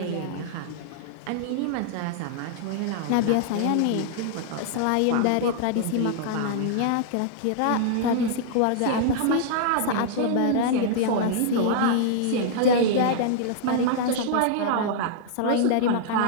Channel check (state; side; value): different; both; correlation -0.01